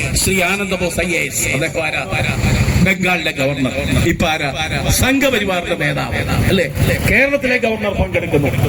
ശ്രീ ആനന്ദ ബോസ് IAS, അദ്ദേഹം ആരാ? ബംഗാളിലെ ഗവർണർ. ഇപ്പൊ ആരാ? സംഘപരിവാറിന്റെ നേതാവ്, അല്ലെ? കേരളത്തിലെ ഗവർണർ പങ്കെടുക്കുന്നു.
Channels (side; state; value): both; identical; correlation 1.00